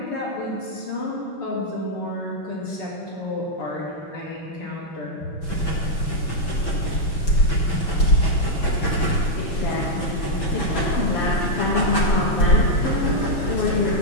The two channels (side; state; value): right; late; 6.1 ms